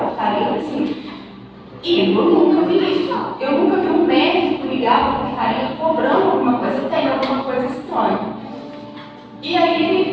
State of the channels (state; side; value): identical; both; correlation 1.00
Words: assim, e eu nunca vi isso. Eu nunca vi um médico ligar para a portaria cobrando alguma coisa, tem alguma coisa estranha. E aí